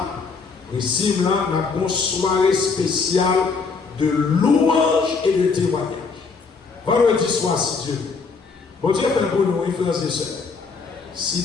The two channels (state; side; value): quieter; right; 4.8 dB